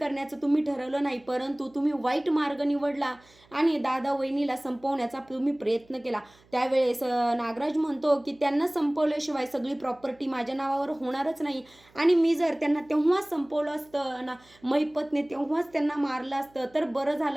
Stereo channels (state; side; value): noise; right; hum, 30 dB below the sound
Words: तुम्ही ठरवलं नाही, परंतु तुम्ही वाईट मार्ग निवडला आणि दादा वहिनीला संपवण्याचा तुम्ही प्रयत्न केला. त्यावेळेस नागराज म्हणतो की त्यांना संपवल्याशिवाय सगळी प्रॉपर्टी माझ्या नावावर होणारच नाही आणि मी जर त्यांना तेव्हाच संपवलं असतं ना, महिपतने तेव्हाच त्यांना मारलं असतं तर बरं